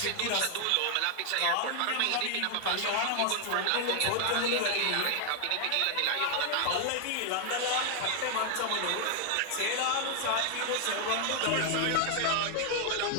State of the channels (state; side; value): different; both; correlation 0.00